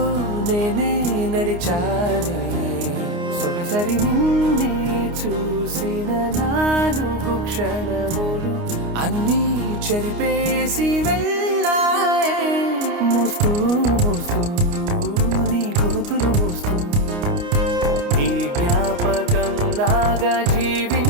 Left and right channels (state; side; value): late; left; 29 ms